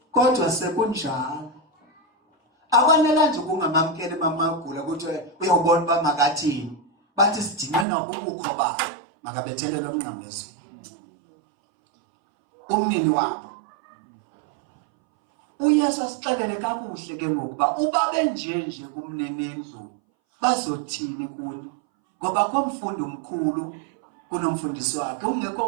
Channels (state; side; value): drops out; left; at 7.9 s